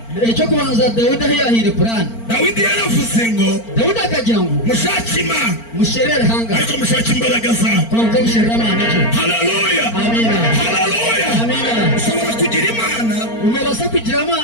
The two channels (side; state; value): right; late; 4.4 ms